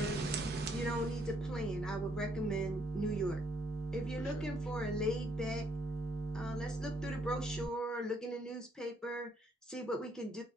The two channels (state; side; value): normal; both; correlation 0.70